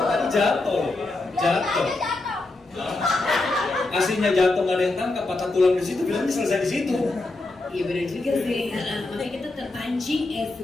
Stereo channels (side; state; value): right; quieter; 3.1 dB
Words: tadi jatuh. Aslinya jatuh nggak ada yang tangkap, patah tulang di situ, bilangnya selesai di situ. Iya benar juga sih. Makanya kita terpancing